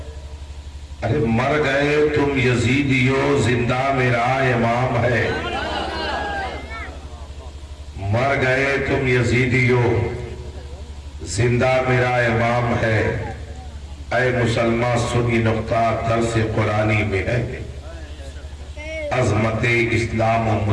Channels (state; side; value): identical; both; correlation 1.00